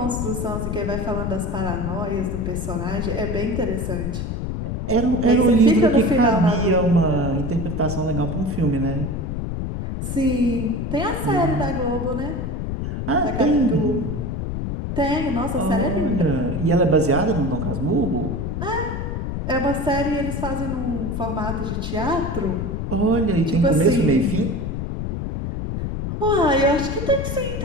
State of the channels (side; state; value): left; noise; rumble, 3 dB below the sound